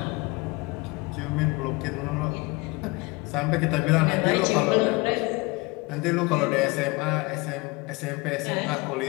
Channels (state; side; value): quieter; right; 25.3 dB